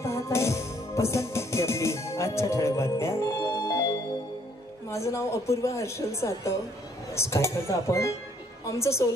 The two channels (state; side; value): normal; both; correlation 0.64